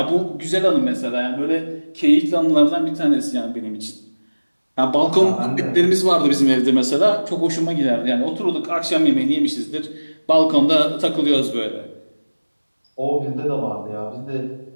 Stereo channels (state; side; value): inverted; both; correlation -1.00